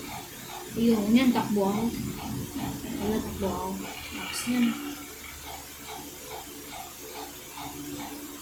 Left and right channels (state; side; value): identical; both; correlation 1.00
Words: Ayun, yan, takbo ako. Wala, takbo ako. Tapos yan.